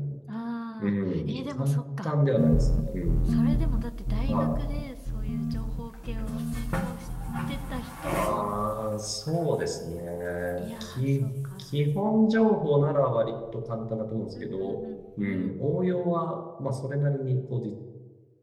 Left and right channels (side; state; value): both; identical; correlation 1.00